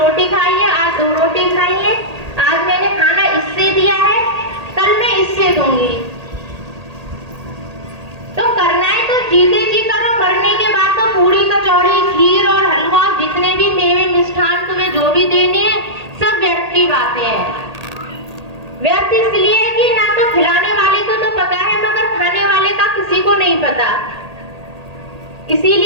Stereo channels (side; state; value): left; late; 1.8 ms